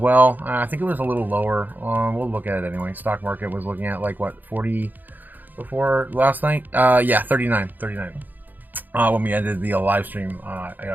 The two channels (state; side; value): late; left; 0.086 ms